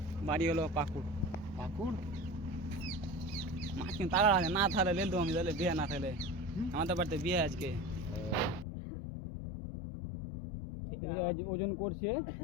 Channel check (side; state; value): right; drops out; at 8.7 s